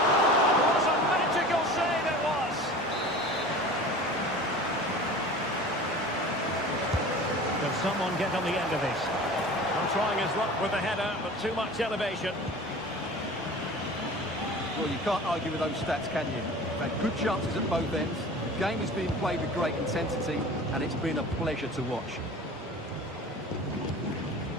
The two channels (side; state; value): both; normal; correlation 0.39